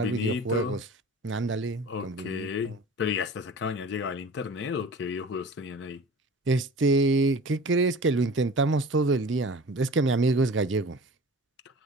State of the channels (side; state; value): both; normal; correlation 0.40